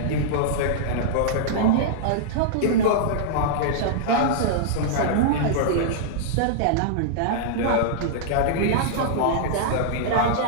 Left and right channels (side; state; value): both; different; correlation -0.02